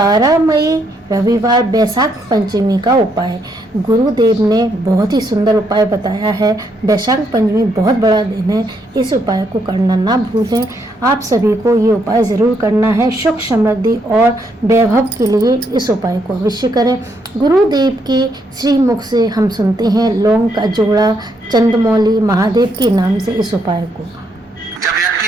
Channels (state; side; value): normal; both; correlation 0.75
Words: मई रविवार बैसाख पंचमी का उपाय। गुरुदेव ने बहुत ही सुंदर उपाय बताया है। बैसाख पंचमी बहुत बड़ा दिन है, इस उपाय को करना ना भूलें। आप सभी को ये उपाय ज़रूर करना है। सुख समृद्धि और वैभव के लिए इस उपाय को अवश्य करें। गुरुदेव के श्री मुख से हम सुनते हैं लौंग का जोड़ा, चंद्रमौली महादेव के नाम से इस उपाय को। जब